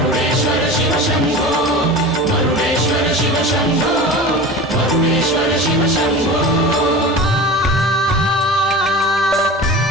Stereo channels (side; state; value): both; normal; correlation 0.33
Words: ಶಿವ ಶಂಭೋ ಮರುಡೇಶ್ವರ ಶಿವ ಶಂಭೋ ಮರುಡೇಶ್ವರ ಶಿವ ಶಂಭೋ